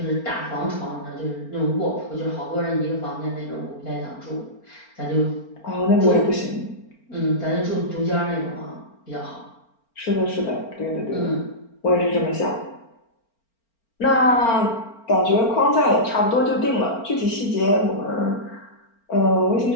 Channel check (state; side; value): late; right; 4.4 ms